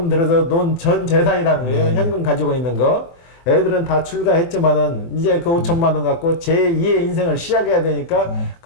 들어서 논 전 재산이라는 거예요. 현금 가지고 있는 거. 애들은 다 출가했지만은 이제 그 5천만 원 갖고 제2의 인생을 시작해야 되니까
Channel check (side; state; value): right; late; 24 ms